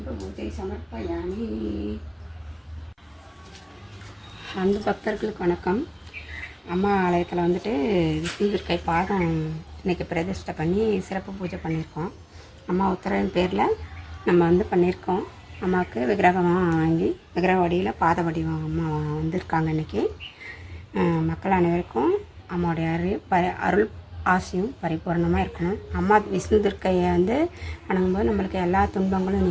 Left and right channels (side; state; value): both; identical; correlation 1.00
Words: பூஜை சமர்ப்பயாமி. அன்பு பக்தர்களுக்கு வணக்கம். அம்மா ஆலயத்தில் வந்துட்டு விஷ்ணு துர்க்கை பாதம் இன்றைக்கி பிரதிஷ்டை பண்ணி சிறப்பு பூஜை பண்ணியிருக்கோம். அம்மா உத்தரவின் பேரில் நம்ம வந்து பண்ணியிருக்கோம். அம்மாவுக்கு விக்கிரகமாக வாங்கி விக்கிரக வடிவில் பாத வடிவம் அம்மா வந்திருக்காங்க. இன்றைக்கி மக்கள் அனைவருக்கும் அம்மாவுடைய அருள் ஆசையும் பரிபூர்ணமாக இருக்கணும். அம்மா விஷ்ணு துர்க்கையை வந்து வணங்கும்போது நம்மளுக்கு எல்லா துன்பங்களும்